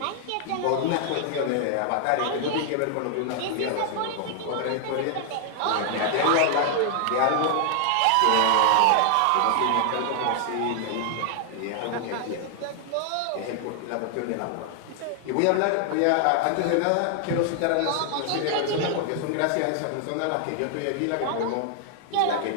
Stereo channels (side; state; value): both; different; correlation 0.00